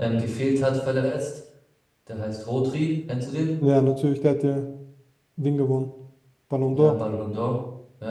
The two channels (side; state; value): both; identical; correlation 1.00